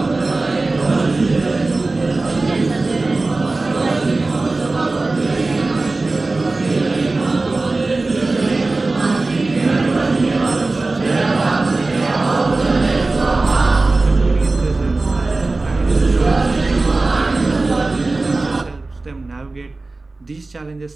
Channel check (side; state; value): left; quieter; 3.3 dB